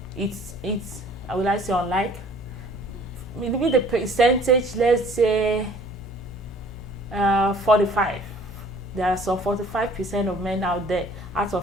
It's will I say unlike? Maybe the percentage, let's say 45. There are some 45% of men out there out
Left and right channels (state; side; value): normal; both; correlation 0.53